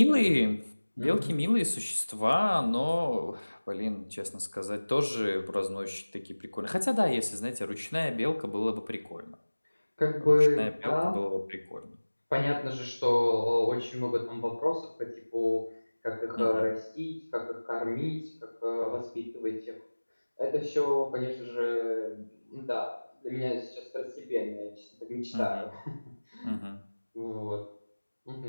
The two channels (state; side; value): inverted; both; correlation -1.00